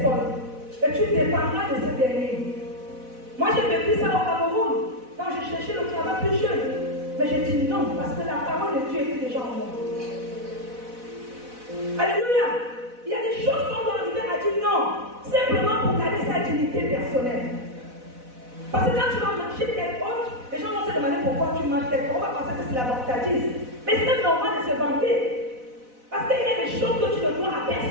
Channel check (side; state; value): left; late; 4.0 ms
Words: Et tu dépendras de ce dernier. Moi, j'ai vécu ça au Cameroun, quand je cherchais le travail plus jeune. Mais j'ai dit non, parce que la parole de Dieu était déjà en moi. Alléluia. Il y a des choses qu'on doit arriver à dire non, simplement pour garder sa dignité personnelle. Parce que quand tu vas marcher tête haute, les gens vont se demander pourquoi tu marches tête haute. On va penser que c'est la vantardise. Mais c'est même normal de se vanter. Parce qu'il y a des choses que tu ne dois à